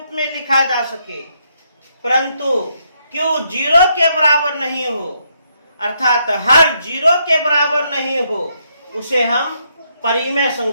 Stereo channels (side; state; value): both; inverted; correlation -0.76